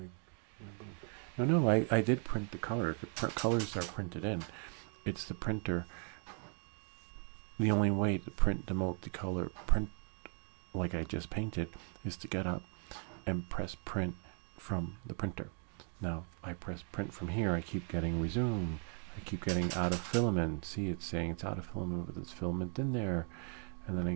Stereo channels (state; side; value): quieter; left; 39.3 dB